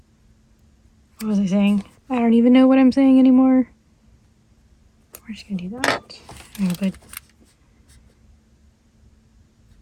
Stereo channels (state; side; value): identical; both; correlation 1.00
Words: What was I saying? I don't even know what I'm saying anymore. We're just gonna do that. I'm gonna put